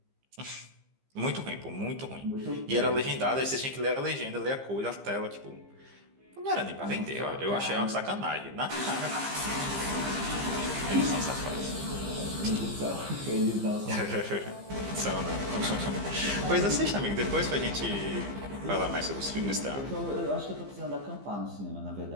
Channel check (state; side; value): late; left; 15 ms